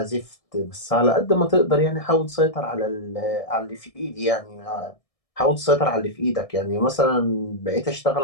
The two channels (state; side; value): late; right; 1.6 ms